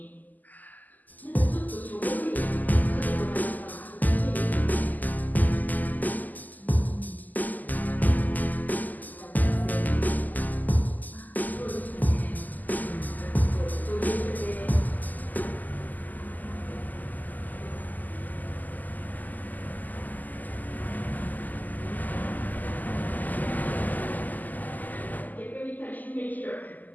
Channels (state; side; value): late; right; 0.083 ms